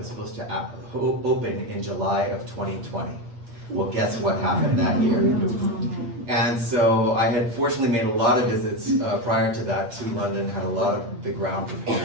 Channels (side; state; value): left; late; 8.4 ms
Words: supposed to open in July of 2020. Well, guess what happened that year? And so I had fortunately made a lot of visits prior to that to London, had a lot of the ground